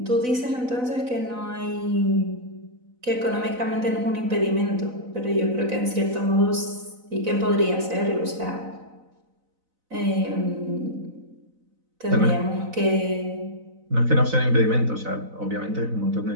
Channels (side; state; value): left; late; 4.0 ms